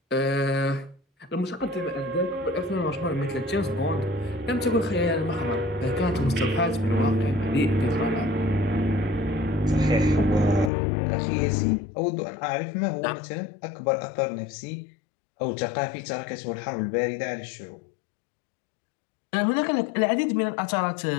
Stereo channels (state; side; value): drops out; right; at 10.7 s